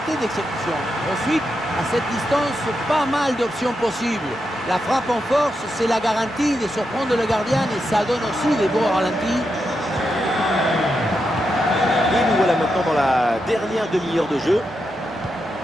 d'exécution. Ensuite, à cette distance, pas mal d'options possibles. La frappe en force, c'est la garantie de surprendre le gardien et ça donne aussi des beaux ralentis. Et nous voilà maintenant dans la dernière demi-heure de jeu.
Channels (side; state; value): both; normal; correlation 0.85